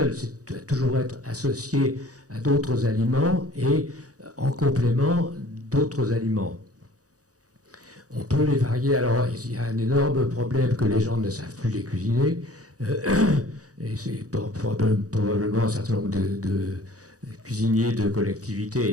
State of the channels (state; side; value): late; left; 0.67 ms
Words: C'est doit toujours être associé à d'autres aliments et en complément d'autres aliments. On peut les varier. Alors, il y a un énorme problème que les gens ne savent plus les cuisiner. Et c'est probablement un certain nombre de cuisiniers de